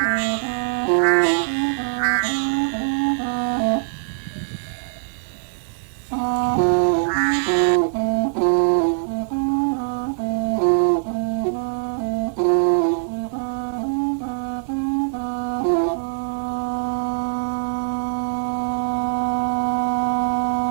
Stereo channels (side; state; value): left; silent; digital silence